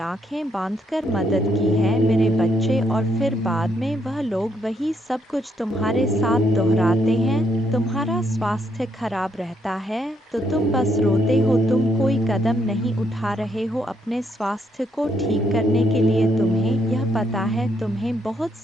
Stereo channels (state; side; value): normal; both; correlation 0.74